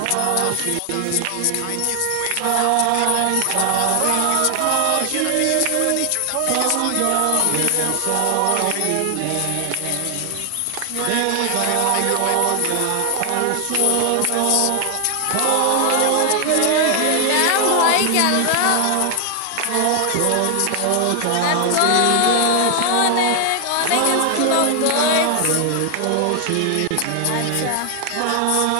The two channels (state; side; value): different; both; correlation 0.00